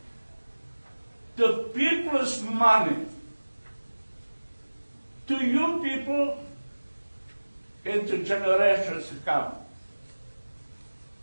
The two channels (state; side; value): inverted; both; correlation -1.00